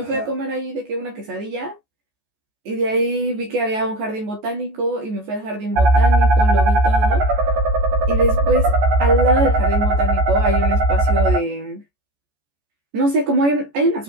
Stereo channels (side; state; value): left; late; 14 ms